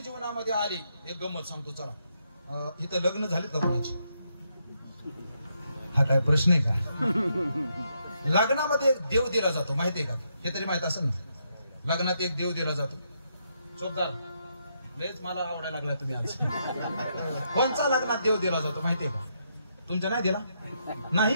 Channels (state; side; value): inverted; both; correlation -0.78